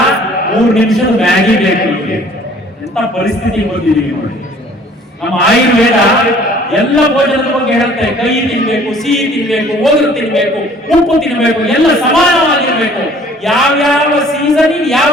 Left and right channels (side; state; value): both; normal; correlation 0.54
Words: 3 ನಿಮಿಷದ ಮ್ಯಾಗಿ ಬೇಕು. ಎಂತ ಪರಿಸ್ಥಿತಿ ಬಂದಿದ್ದೀವಿ ನೋಡಿ. ನಮ್ಮ ಆಯುರ್ವೇದ ಎಲ್ಲ ಭೋಜನದ ಬಗ್ಗೆ ಹೇಳುತ್ತೆ. ಕಹಿ ತಿನ್ಬೇಕು, ಸಿಹಿ ತಿನ್ಬೇಕು, ಒಗರು ತಿನ್ಬೇಕು, ಉಪ್ಪು ತಿನ್ಬೇಕು, ಎಲ್ಲ ಸಮಾನವಾಗಿರ್ಬೇಕು. ಯಾವ್ಯಾವ ಸೀಸನ್ ಯಾವ